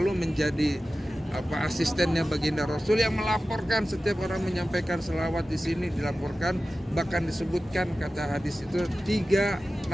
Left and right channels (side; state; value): both; normal; correlation 0.95